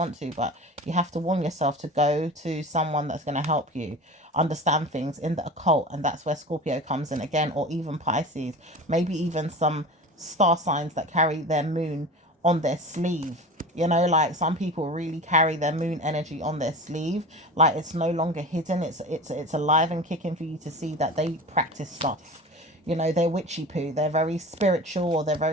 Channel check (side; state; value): both; normal; correlation 0.34